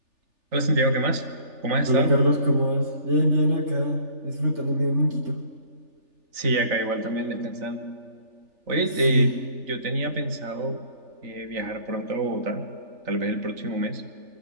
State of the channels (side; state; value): left; late; 3.4 ms